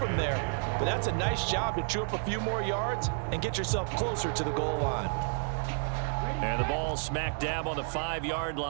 there, but that's a nice job to chew up a few more yards and get yourself closer to the goal line. And the ball smack dab on the 5-yard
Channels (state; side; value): silent; left; 57 dB below the other